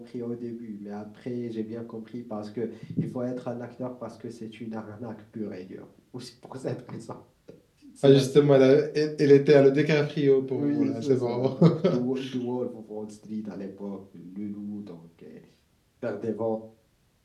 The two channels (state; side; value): identical; both; correlation 1.00